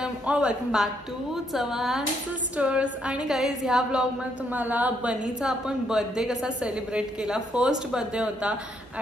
back to Chavan sisters. आणि guys, ह्या ब्लॉगमध्ये तुम्हाला बनीचा आपण बर्थडे कसा सेलिब्रेट केला. फर्स्ट बर्थडे होता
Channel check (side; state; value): both; normal; correlation 0.74